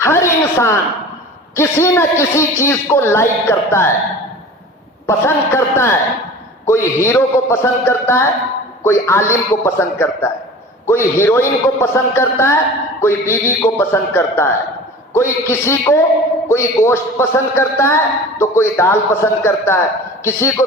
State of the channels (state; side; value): normal; both; correlation 0.39